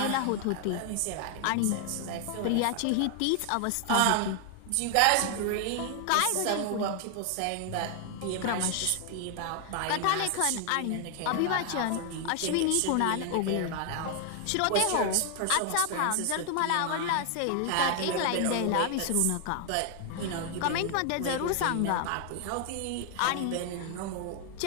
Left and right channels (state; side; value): different; both; correlation 0.00